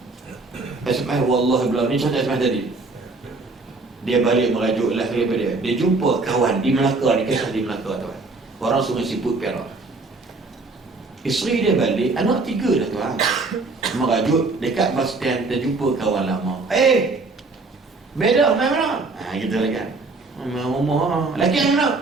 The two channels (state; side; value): quieter; left; 3.6 dB